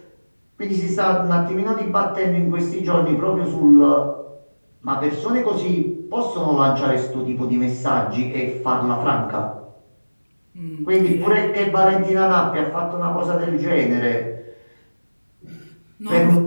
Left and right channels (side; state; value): both; inverted; correlation -1.00